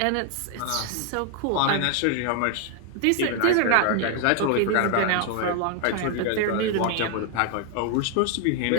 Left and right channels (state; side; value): different; both; correlation 0.00